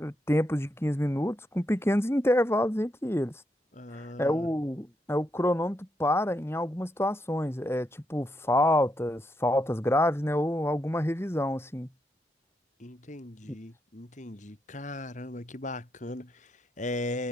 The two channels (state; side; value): normal; both; correlation 0.81